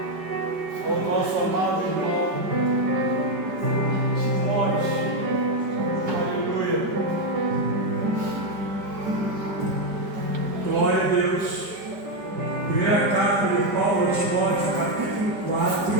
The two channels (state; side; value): late; left; 5.1 ms